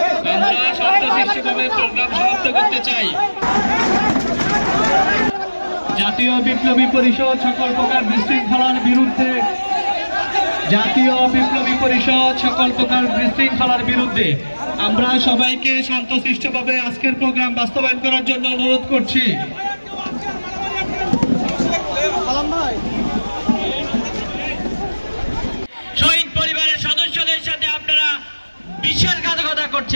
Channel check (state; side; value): inverted; both; correlation -1.00